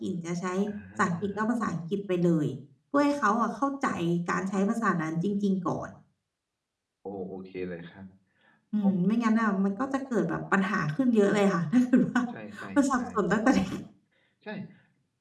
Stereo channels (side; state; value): both; identical; correlation 1.00